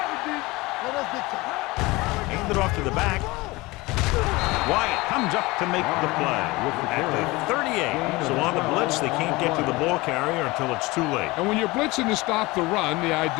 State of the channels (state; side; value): quieter; right; 22.1 dB